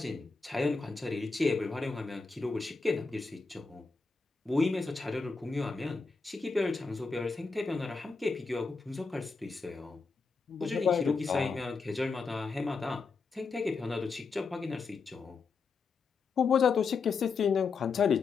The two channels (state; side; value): quieter; right; 4.6 dB